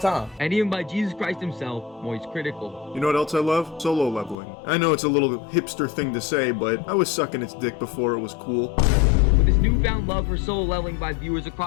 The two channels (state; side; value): drops out; right; at 4.4 s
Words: And even by Jesus Christ himself, Moist Critical. You know what else I love? Solo leveling. I know it's a little hipster thing to say, but I was sucking its dick before it was cool. With this newfound love for solo leveling by viewers